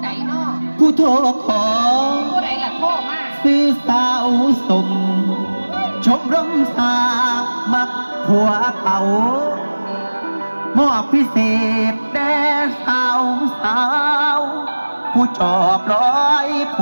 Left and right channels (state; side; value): inverted; both; correlation -1.00